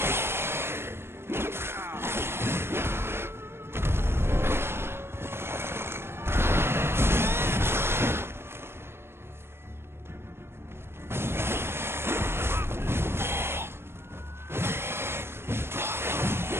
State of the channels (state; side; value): late; left; 0.12 ms